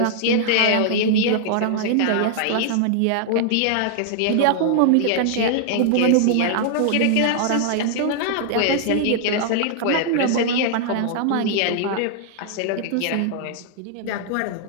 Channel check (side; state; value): both; different; correlation -0.01